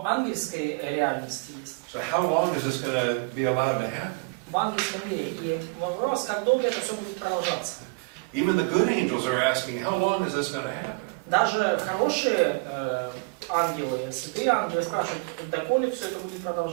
ангельской реальности есть. So how long is this going to be allowed to happen? В ангельском мире. И вопрос, как долго это все будет продолжаться. Even the good angels are asking, how long is this going to happen? Даже хорошие ангелы, святые ангелы спрашивают, доколе все это будет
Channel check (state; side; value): quieter; left; 29.3 dB